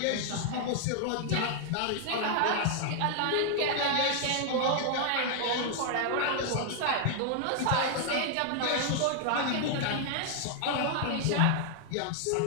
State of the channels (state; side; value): different; both; correlation 0.00